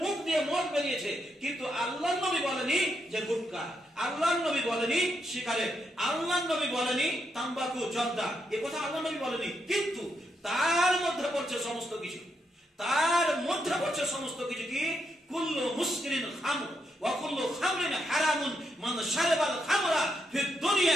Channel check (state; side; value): normal; both; correlation 0.80